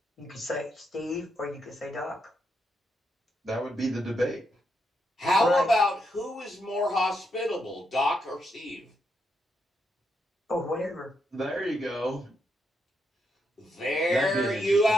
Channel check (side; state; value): both; normal; correlation 0.80